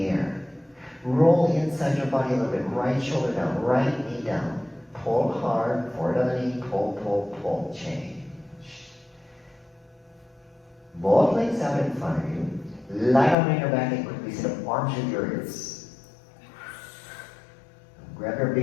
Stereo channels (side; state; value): right; drops out; at 13.4 s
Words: air. Roll inside your body a little bit, right shoulder down, right knee down. Pull hard, forward on the knee, pull, pull, pull, change. Both legs out in front of you. Lie down on your back and quickly sit up, arms with your ears. Grab your